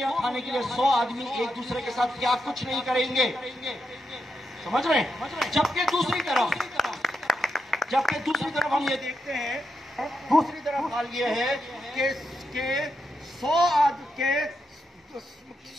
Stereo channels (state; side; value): normal; both; correlation 0.84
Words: کھانے کے لیے 100 آدمی ایک دوسرے کے ساتھ کیا کچھ نہیں کریں گے؟ سمجھ رہے ہیں؟ جبکہ دوسری طرف ہم یہ دیکھتے ہیں، دوسری طرف حال یہ ہے کہ